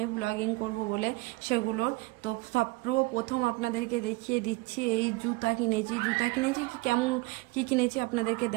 ব্লগিং করব বলে সেগুলোর। তো সর্বপ্রথম আপনাদেরকে দেখিয়ে দিচ্ছি, এই জুতা কিনেছি কেমন কি কিনেছি আপনাদেরকে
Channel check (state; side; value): quieter; left; 22.7 dB